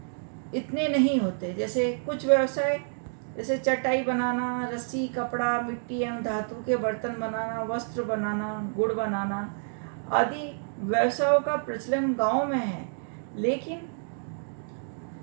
इतने नहीं होते। जैसे कुछ व्यवसाय, जैसे चटाई बनाना, रस्सी, कपड़ा, मिट्टी एवं धातु के बर्तन बनाना, वस्त्र बनाना, गुड़ बनाना आदि व्यवसायों का प्रचलन गांव में है। लेकिन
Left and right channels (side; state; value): left; silent; digital silence